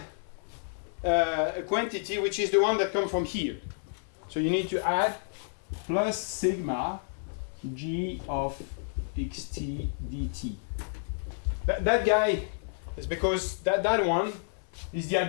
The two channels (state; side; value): silent; right; 58 dB below the other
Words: a quantity which is the one that comes from here. So you need to add plus sigma g of xt dt. That guy is because that one is the